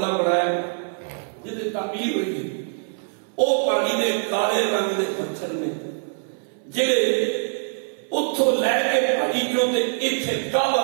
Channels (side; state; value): left; silent; 63 dB below the other